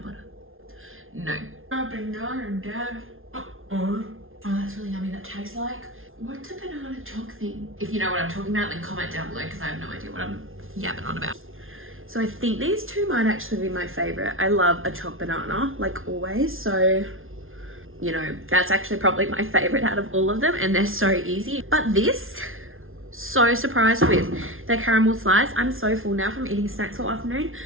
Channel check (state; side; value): late; left; 0.60 ms